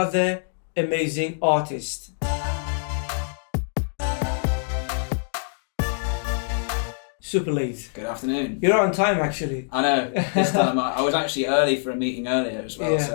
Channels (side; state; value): right; silent; 62 dB below the other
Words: amazing artist. Superlate. Good afternoon. You're on time actually. I know, this time I was actually early for a meeting earlier as well, Yeah.